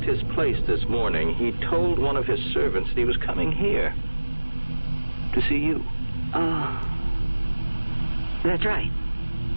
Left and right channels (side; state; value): both; inverted; correlation -1.00